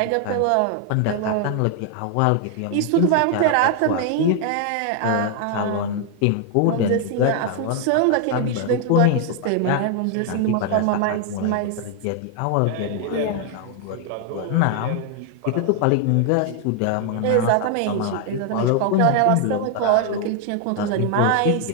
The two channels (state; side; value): different; both; correlation 0.00